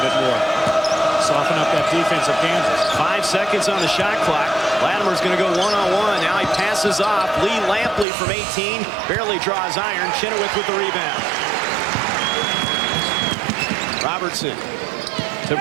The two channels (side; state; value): left; drops out; at 8.1 s